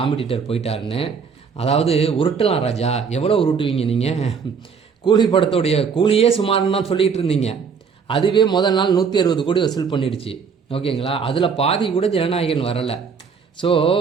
போயிட்டாருன்னு. அதாவது உருட்டலாம் ராஜா, எவ்வளோ உருட்டுவீங்க நீங்கள்? கூலி படத்தோடைய கூலியே சுமார்னு தான் சொல்லிகிட்டு இருந்தீங்க. அதுவே முதல் நாள் 160 கோடி வசூல் பண்ணிடுச்சு. ஓகேங்களா? அதில் பாதி கூட ஜனநாயகன் வரலை. ஸோ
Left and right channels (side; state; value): left; quieter; 6.0 dB